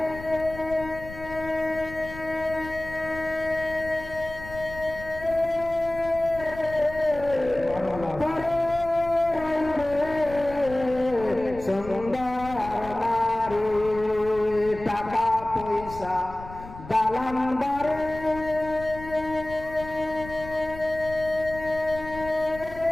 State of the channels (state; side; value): noise; left; rumble, 14 dB below the sound